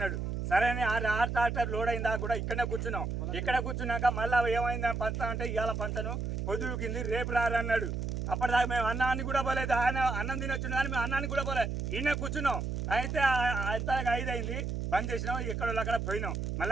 సరే అని 6 ట్రాక్టర్ లోడ్ అయిందా కూడా ఇక్కడనే కూర్చున్నాం. ఇక్కడ కూర్చున్నాక మళ్ళీ ఏమైందని పంచుతామంటే ఇవాళ పంచను పొద్దుకింది, రేపు రారన్నాడు. అప్పటిదాకా మేము అన్నాన్ని కూడా పోలేదు. ఆయన అన్నం తిని వచ్చిన కానీ మేము అన్నాన్ని కూడా పోలేదు, ఈయన కూర్చున్నాం. అయితే అంత 5 అయింది, బంద్ చేసినాం, ఎక్కడో అక్కడ పోయినాం.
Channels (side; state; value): right; noise; hum, 3 dB below the sound